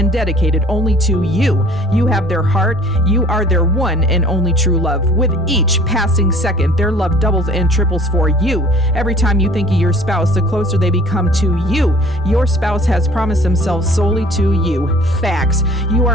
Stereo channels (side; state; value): both; normal; correlation 0.50